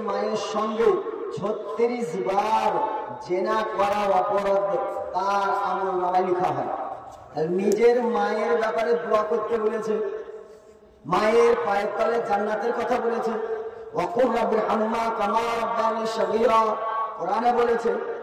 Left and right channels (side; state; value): both; identical; correlation 1.00